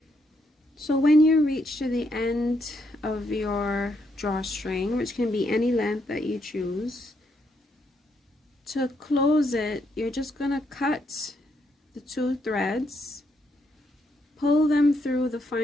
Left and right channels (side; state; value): both; normal; correlation 0.76